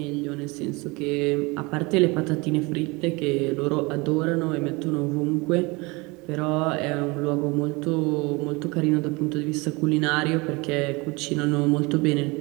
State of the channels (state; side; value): quieter; left; 25.6 dB